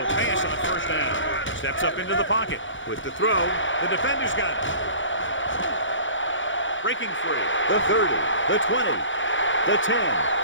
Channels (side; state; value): right; late; 0.56 ms